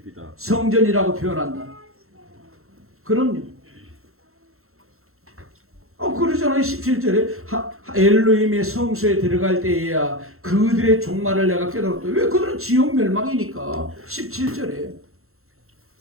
성전이라고 표현한다. 그럼요. 그러잖아요. 17절에 엘로힘의 성소에 들어갈 때에야 그들의 종말을 내가 깨달았다. 왜? 그들은 지옥 멸망이니까. 17절에.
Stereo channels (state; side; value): late; left; 0.62 ms